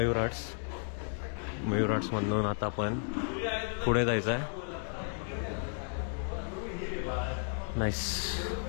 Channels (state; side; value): silent; right; 55 dB below the other